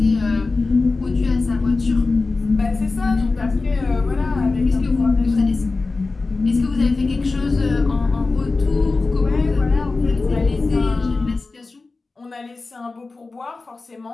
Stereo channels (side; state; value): right; quieter; 3.7 dB